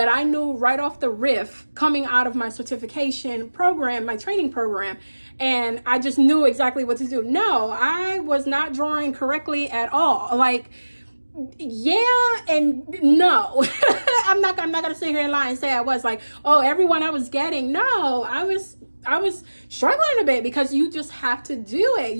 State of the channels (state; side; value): inverted; both; correlation -1.00